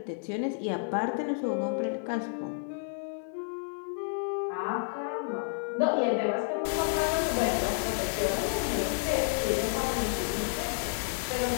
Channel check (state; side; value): silent; right; 57 dB below the other